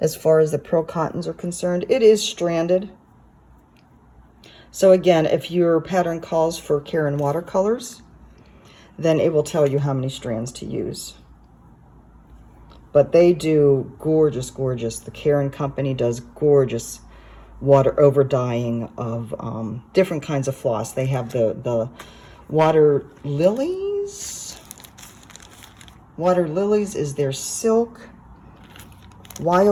far as the pearl cottons are concerned. It is stranded. So again, if your pattern calls for Caron watercolors, then it will tell you how many strands to use. But they do gorgeous, gorgeous. The Caron company does gorgeous water overdying of different kinds of floss. They have the water lilies. Water lilies is their silk.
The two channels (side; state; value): both; identical; correlation 1.00